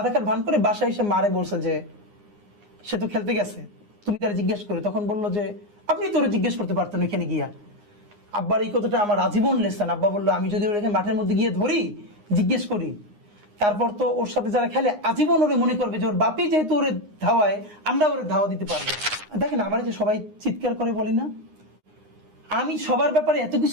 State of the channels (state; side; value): late; left; 9.7 ms